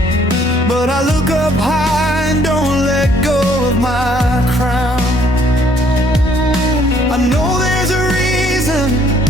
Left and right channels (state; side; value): normal; both; correlation 0.64